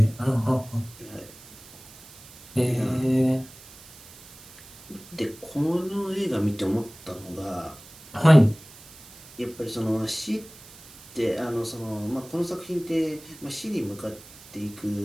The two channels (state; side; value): noise; right; hiss, 20 dB below the sound